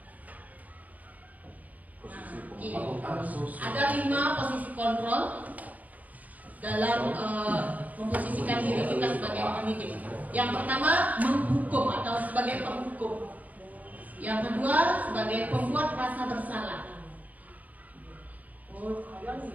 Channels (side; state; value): left; late; 0.077 ms